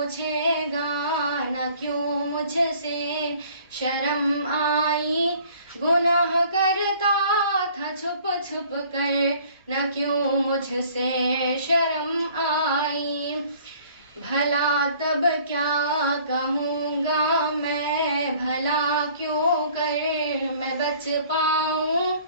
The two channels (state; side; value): inverted; both; correlation -0.54